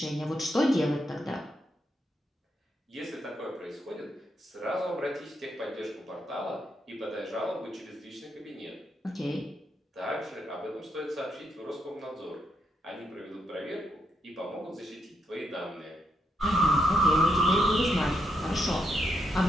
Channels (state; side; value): normal; both; correlation 0.80